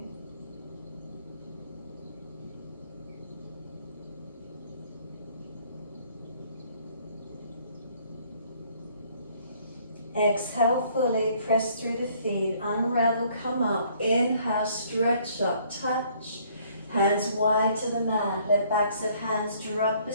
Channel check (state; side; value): inverted; both; correlation -0.62